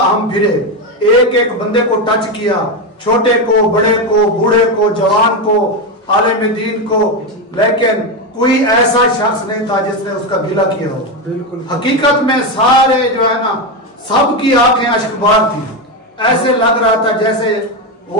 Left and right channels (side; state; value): both; normal; correlation 0.11